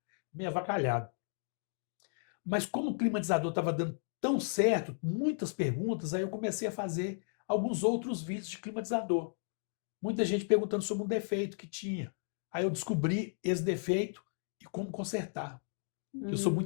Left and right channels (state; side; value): silent; right; digital silence